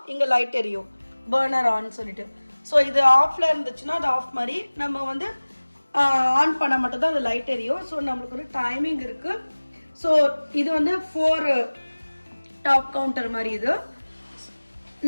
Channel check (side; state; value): both; inverted; correlation -1.00